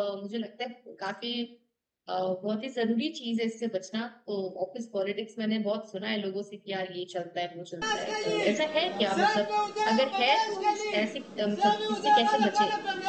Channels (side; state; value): both; identical; correlation 1.00